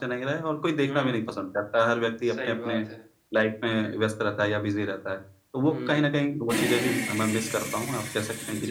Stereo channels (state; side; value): identical; both; correlation 1.00